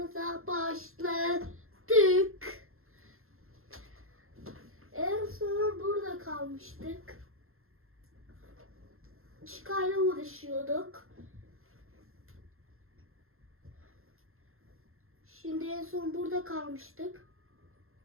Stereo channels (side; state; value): left; late; 0.61 ms